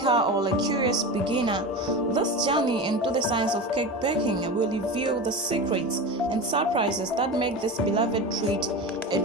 or a curious beginner, this journey into the science of cake baking will reveal the secrets and surprises that make this beloved treat a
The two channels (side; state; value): both; normal; correlation 0.26